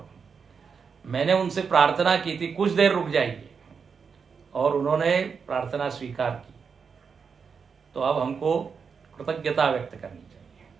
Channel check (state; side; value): quieter; left; 5.9 dB